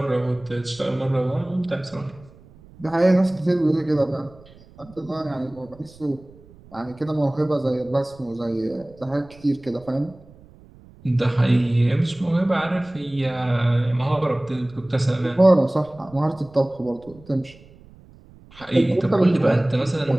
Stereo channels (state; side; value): noise; right; rumble, 24 dB below the sound